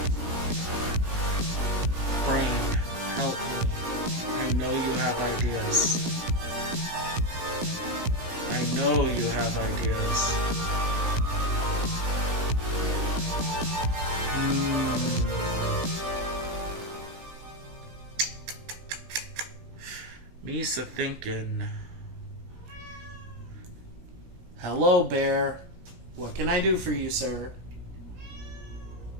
brain, help me. I know you have ideas. I know you have ideas. Misa thinking. Hello, Bear. What can I do for you, sir?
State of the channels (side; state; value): left; late; 17 ms